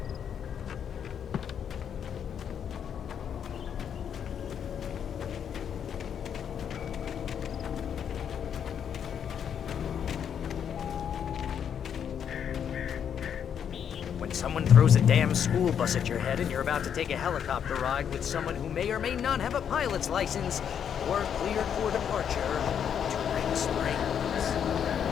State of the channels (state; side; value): quieter; right; 8.3 dB